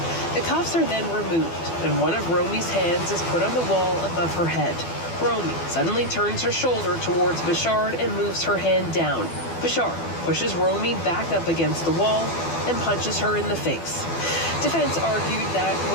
The cuffs are then removed, and one of Romy's hands is put on the wall above her head. Romy suddenly turns her shoulder towards Bichard and moves her hand down. Bichard pushes Romy back up against the wall and punches her in the face. Defense argued that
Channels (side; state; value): right; late; 12 ms